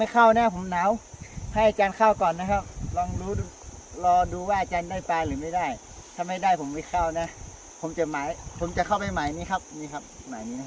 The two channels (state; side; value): identical; both; correlation 1.00